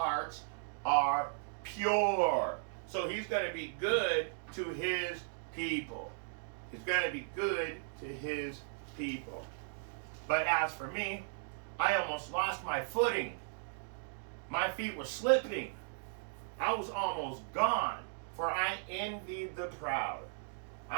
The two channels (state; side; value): silent; left; digital silence